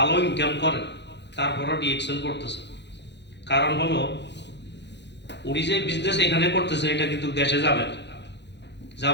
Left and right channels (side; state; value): right; late; 0.51 ms